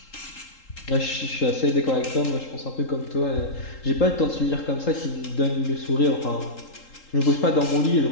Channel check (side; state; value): right; late; 3.8 ms